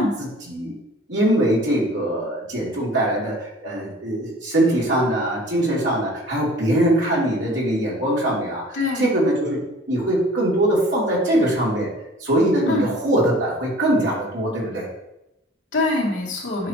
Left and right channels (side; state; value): both; normal; correlation 0.47